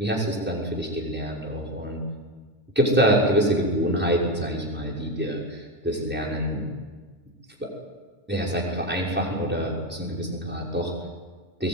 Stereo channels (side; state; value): both; normal; correlation 0.14